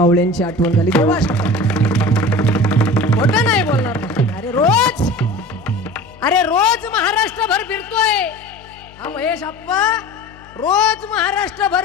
आठवण झाली. देवा खोटं नाही बोलणार. अरे रोज महाराष्ट्रभर फिरतोय हा महेश आप्पा, रोज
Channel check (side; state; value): left; noise; hum, 23 dB below the sound